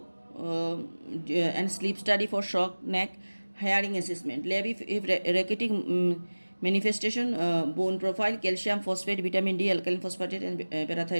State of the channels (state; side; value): inverted; both; correlation -1.00